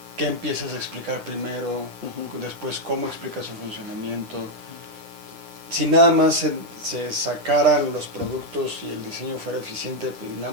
qué empiezas a explicar primero, después cómo explicas su funcionamiento. Si nada más se sacaran los productos y el diseño fuera eficiente, pues nada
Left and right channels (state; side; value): late; left; 9.9 ms